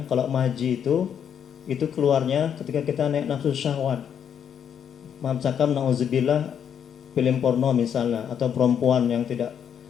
kalau maji itu keluarnya ketika kita naik nafsu syahwat. Maaf cakap nauzubillah film porno misalnya atau perempuan yang tidak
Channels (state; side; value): quieter; right; 8.3 dB